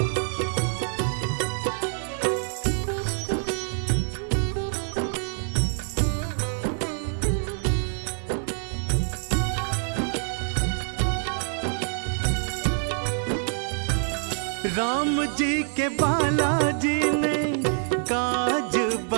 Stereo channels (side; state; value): left; silent; 61 dB below the other